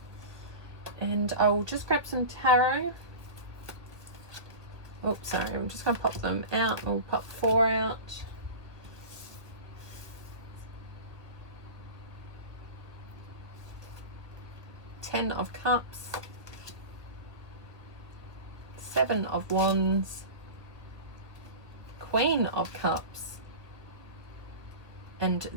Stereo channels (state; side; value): late; left; 1.0 ms